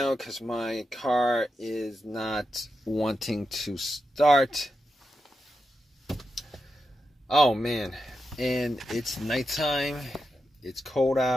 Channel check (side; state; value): both; normal; correlation 0.88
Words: because my car is not wanting to start. Oh man. And it's nighttime. It's cold